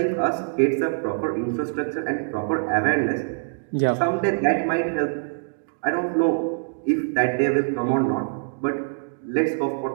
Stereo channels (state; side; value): silent; left; digital silence